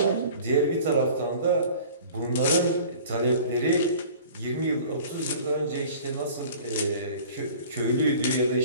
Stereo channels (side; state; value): both; inverted; correlation -0.45